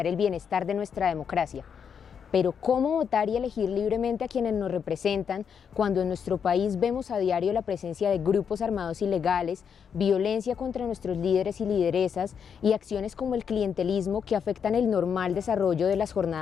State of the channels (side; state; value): right; quieter; 7.2 dB